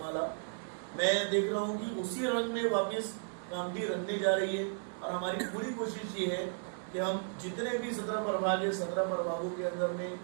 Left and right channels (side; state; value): left; silent; digital silence